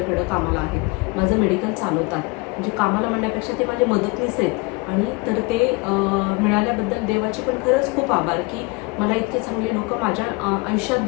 कामाला आहेत, माझं मेडिकल चालवतात. म्हणजे कामाला म्हणण्यापेक्षा ते माझे मदतनीस आहेत. आणि तर ते मिळाल्याबद्दल देवाचे पण खरंच खूप आभार की मला इतके चांगले लोक माझ्या आयुष्यात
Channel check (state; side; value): quieter; right; 26.1 dB